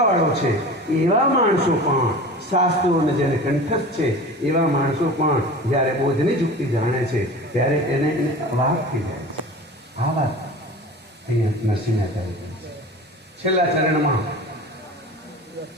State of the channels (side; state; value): both; normal; correlation 0.37